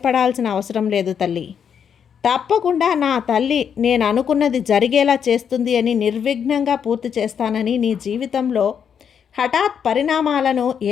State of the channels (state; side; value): quieter; right; 7.7 dB